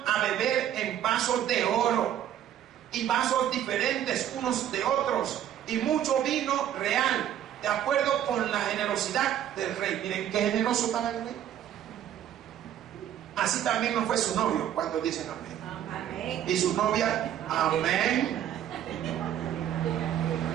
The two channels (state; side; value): quieter; left; 10.7 dB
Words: a beber en vasos de oro y vasos diferentes unos de otros, y mucho vino real, de acuerdo con la generosidad del rey. Miren qué generoso estaba el rey. Así también no fue su novio. ¿Cuántos dicen amén? Amén. Y su novia, amén.